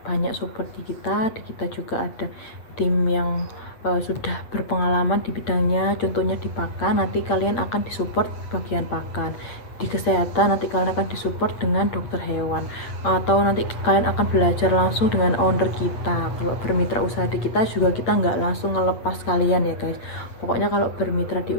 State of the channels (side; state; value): right; late; 8.5 ms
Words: banyak support di kita juga ada tim yang sudah berpengalaman di bidangnya, contohnya di pakan. Nanti kalian akan disupport bagian pakan. Di kesehatan nanti kalian akan disupport dengan dokter hewan, atau nanti kalian akan belajar langsung dengan owner kita. Kalau bermitra usaha di kita juga, kita nggak langsung ngelepas kalian ya guys. Pokoknya kalau